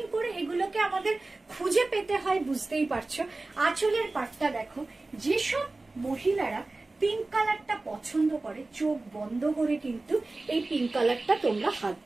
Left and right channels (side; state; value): left; quieter; 3.2 dB